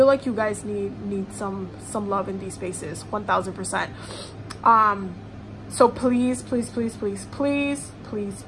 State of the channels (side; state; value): both; identical; correlation 1.00